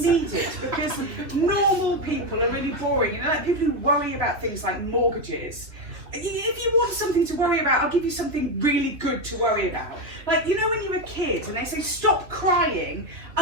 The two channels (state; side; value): late; left; 3.1 ms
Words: it, because normal people are really boring, you know, like people who worry about things like mortgages. If you want something to worry about, I'll give you something really good to worry about. Like, you know when you're a kid and they say, stop crying,